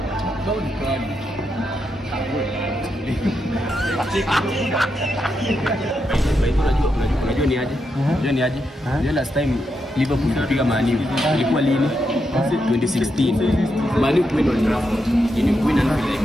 Unajua ni aje? Unajua ni aje? Unajua last time Liverpool kupiga Man U ilikuwa lini? 2016. Man U kwenda Old Trafford. Ili kuwina na vile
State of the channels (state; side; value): normal; both; correlation 0.83